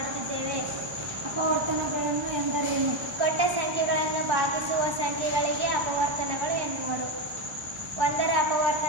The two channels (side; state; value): left; late; 1.1 ms